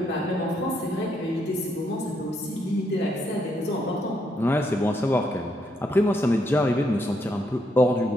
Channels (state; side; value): normal; both; correlation 0.76